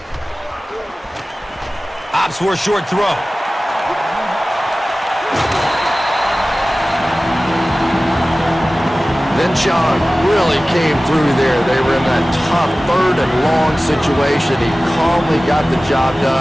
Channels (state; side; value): normal; both; correlation 0.97